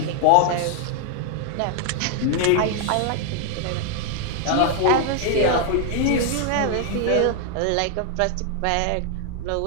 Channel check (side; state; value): both; different; correlation 0.00